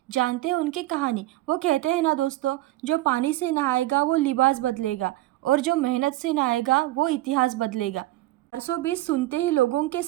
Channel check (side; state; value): left; quieter; 16.7 dB